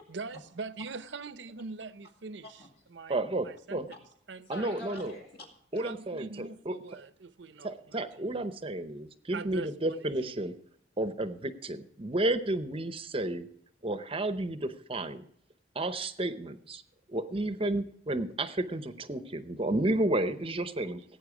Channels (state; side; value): normal; both; correlation 0.50